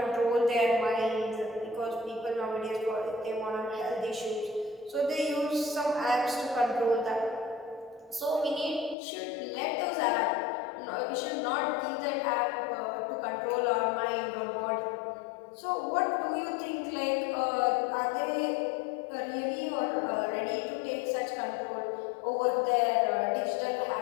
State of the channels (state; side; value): drops out; right; at 9.0 s